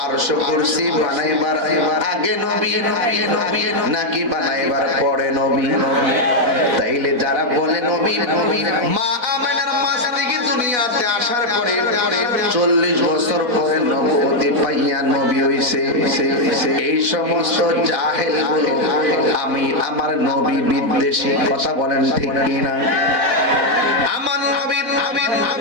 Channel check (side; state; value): left; late; 4.1 ms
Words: আরশ কুরসি বানাইবার আগে নবী নবী নবী নাকি বানাইবার পরে নবী তাইলে যারা বলে নবী নবী মা আমেনার মাস থেকে দুনিয়াতে আসার পরে 40 বছর পরে নবুয়তি পাইয়া নবী হইছে এই সমস্ত জাহেল গুলো আমি আমার নবী বিদ্বেষী কথা বলেন ঠিক কি না আমার নবী